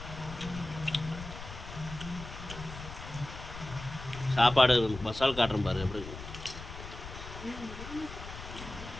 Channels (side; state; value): left; noise; rumble, 11 dB below the sound